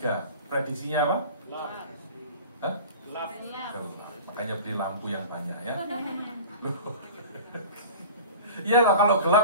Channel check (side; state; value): both; inverted; correlation -0.37